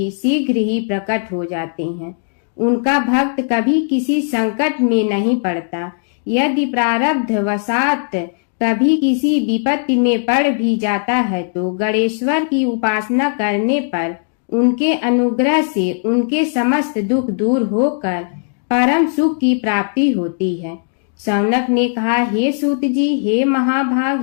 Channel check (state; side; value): silent; right; digital silence